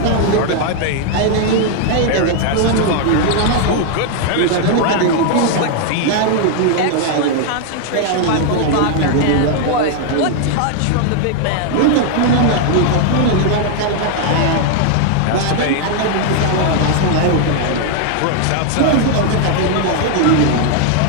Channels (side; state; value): both; different; correlation 0.00